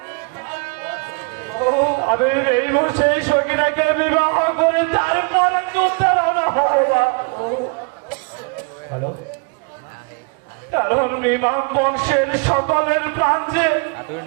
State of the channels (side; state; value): left; quieter; 33.9 dB